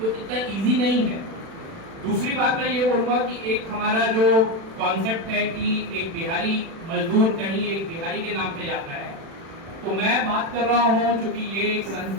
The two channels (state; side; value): late; left; 36 ms